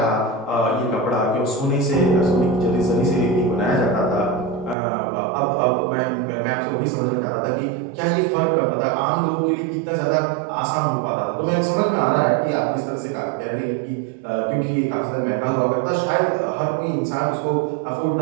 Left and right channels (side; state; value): left; drops out; at 4.8 s